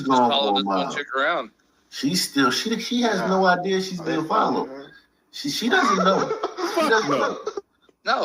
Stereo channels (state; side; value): identical; both; correlation 1.00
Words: just follow this one chick around. She's still she has no idea she's being followed. She doesn't know. She doesn't know.